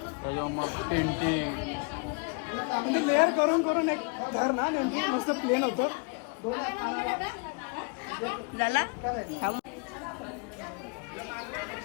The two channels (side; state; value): right; quieter; 32.8 dB